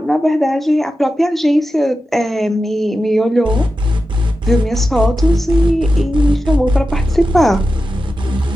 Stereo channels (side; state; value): both; normal; correlation 0.91